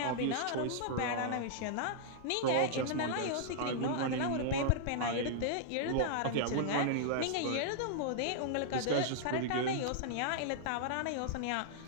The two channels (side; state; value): both; different; correlation -0.01